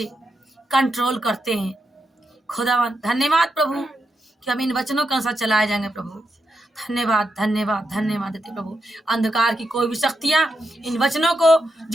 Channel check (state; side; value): normal; both; correlation 0.84